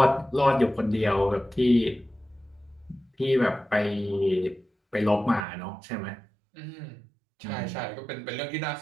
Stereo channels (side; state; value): left; drops out; at 5.5 s